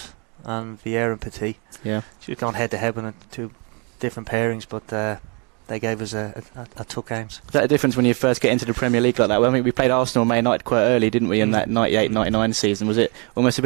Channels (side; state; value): left; quieter; 33.7 dB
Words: and Vieira and Petit. Yeah. She was going head-to-head with two different pairings, but they gave us a tough games. Is that a difference when you first get into the Premier League like that? Well, I mean, we played Arsenal and Man United quite early, didn't we, in that 98-99 season? Was it almost a